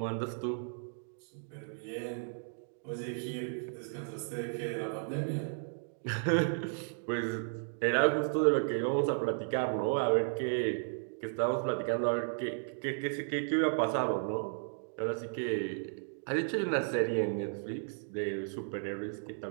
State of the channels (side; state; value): left; silent; digital silence